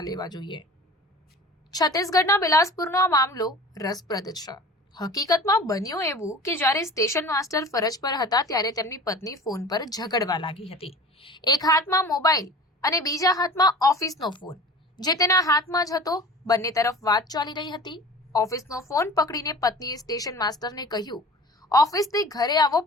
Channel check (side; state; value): both; normal; correlation 0.40